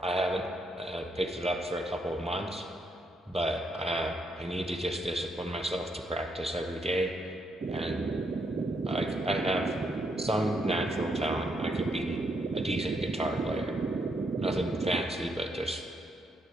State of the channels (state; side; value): normal; both; correlation 0.76